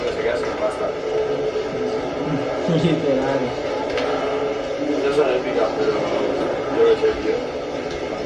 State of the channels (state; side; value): identical; both; correlation 1.00